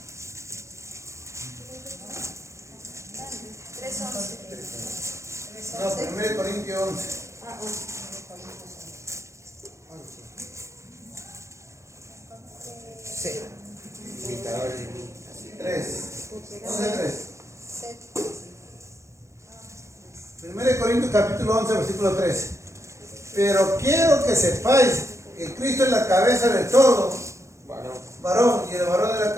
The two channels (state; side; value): late; left; 0.14 ms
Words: No, 1 Corintios 11. Sí. 3. 11:3. 1 Corintios capítulo 11, versículo 3. Pero quiero que sepáis que Cristo es la cabeza de todo, varón, y el varón es la